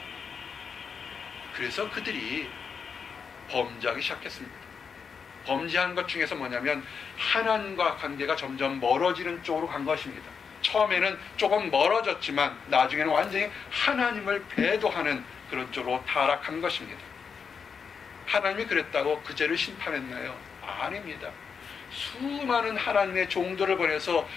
그래서 그들이 범죄하기 시작했습니다. 범죄한 것 중에서 뭐냐면 하나님과 관계가 점점 멀어지는 쪽으로 간 것입니다. 처음에는 조금 멀어졌지만 나중에는 완전히 하나님을 배도하는 그런 쪽으로 타락한 것입니다. 하나님이 그랬다고 그 죄를 심판했나요? 아닙니다. 수많은 하나님의 종들을 보내서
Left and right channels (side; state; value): right; quieter; 6.1 dB